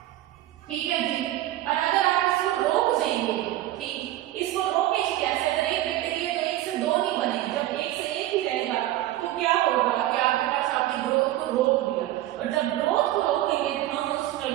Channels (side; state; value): left; quieter; 15.0 dB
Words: ठीक है जी। और अगर आप इसको रोक देंगे, ठीक, इसको रोके कैसे? अगर एक बैक्टीरिया तो एक से दो नहीं बनेगी, जब एक से एक ही रहेगा तो क्या होगा कि आपके पास आपकी ग्रोथ को रोक दिया। और जब ग्रोथ को रोकेंगे तो हम उस